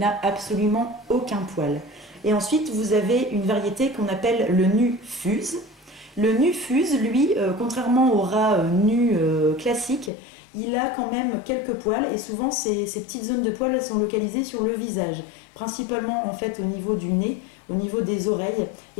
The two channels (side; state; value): right; drops out; at 10.1 s